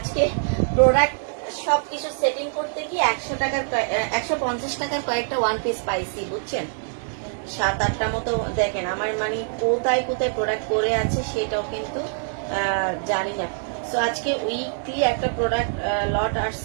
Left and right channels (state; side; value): silent; left; digital silence